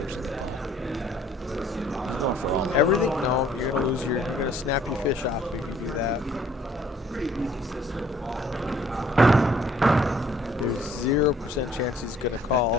in. Everything? No, you're gonna snap your fish off if you do that. There's 0% chance he's gonna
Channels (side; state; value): both; normal; correlation 0.59